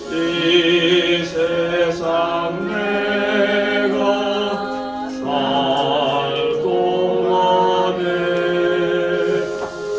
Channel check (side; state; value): right; noise; rumble, 28 dB below the sound